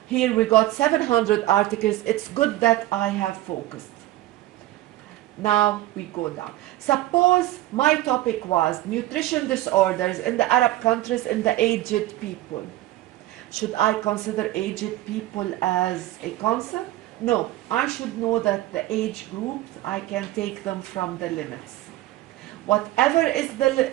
here we got 700 articles. It's good that I have focused. Now we go down. Suppose my topic was nutrition disorders in the Arab countries in the aged people. Should I consider aged people as a concept? No, I should know that the age groups, I can take them from the limits. Whatever is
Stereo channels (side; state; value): left; quieter; 15.7 dB